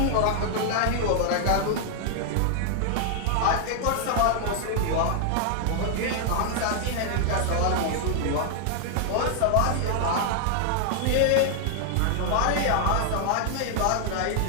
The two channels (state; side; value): different; both; correlation 0.00